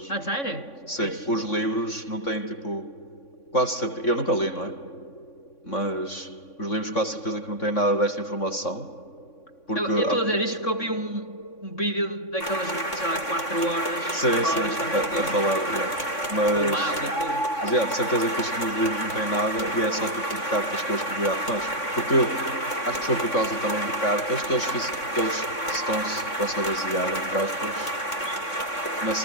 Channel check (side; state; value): right; late; 3.6 ms